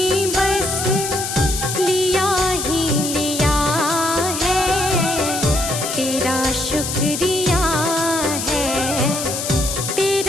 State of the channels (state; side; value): noise; left; hiss, 4 dB below the sound